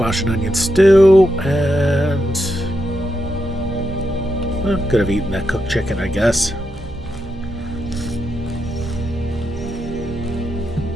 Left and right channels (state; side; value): normal; both; correlation 0.84